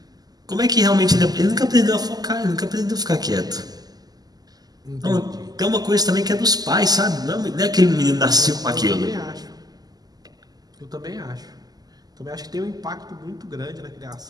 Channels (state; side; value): late; left; 0.19 ms